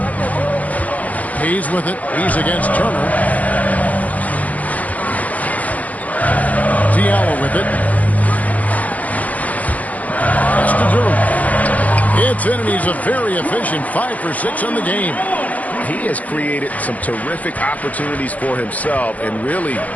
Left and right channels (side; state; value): right; late; 0.073 ms